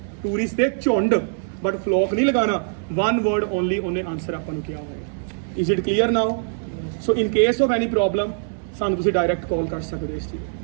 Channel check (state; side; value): silent; left; digital silence